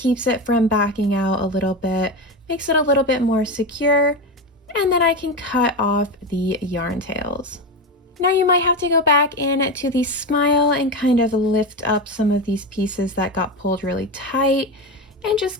it from backing out a little bit, makes it a little bit more secure. And then I can cut off the yarn tails. Now you might have to go back in to the smile and kind of lift up some of these pieces that got pulled really tight and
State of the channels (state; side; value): normal; both; correlation 0.18